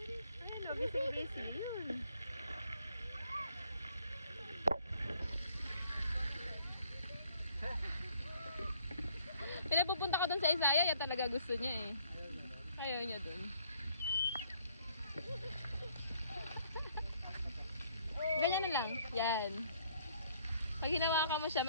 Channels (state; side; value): inverted; both; correlation -0.63